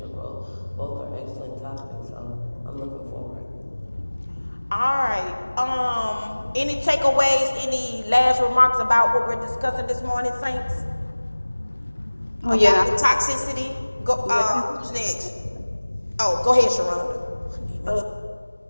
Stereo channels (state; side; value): inverted; both; correlation -1.00